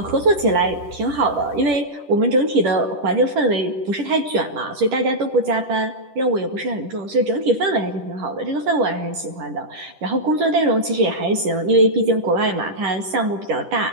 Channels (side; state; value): left; late; 10 ms